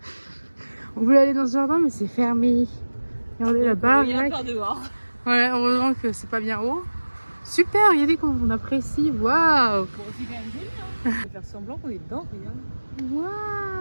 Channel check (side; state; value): both; inverted; correlation -1.00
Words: On voulait aller dans ce jardin, mais c'est fermé. Regardez là-bas. Il y a par dehors. Ouais, heureusement que c'est pas bien haut. Super, regardez comment on apprécie. Waouh! Bon, c'est quand même joli. Hein. On va faire semblant qu'on est dedans, regarde.